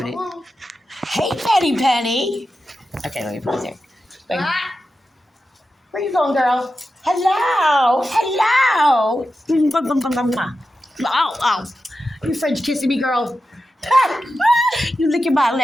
it. Hey, Penny. Okay, let me put it there. Where you going, girl? Hello. Oh. You French kissing me, girl. You licking my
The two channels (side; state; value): both; normal; correlation 0.91